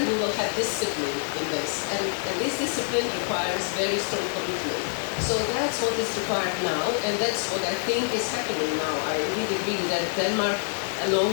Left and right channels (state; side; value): silent; right; 61 dB below the other